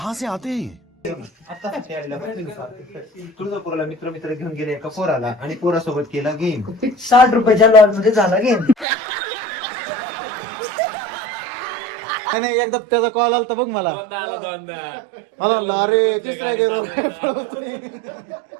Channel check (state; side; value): drops out; left; at 8.8 s